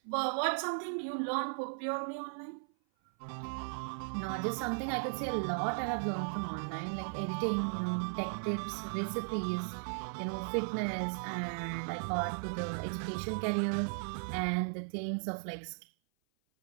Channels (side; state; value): left; silent; 53 dB below the other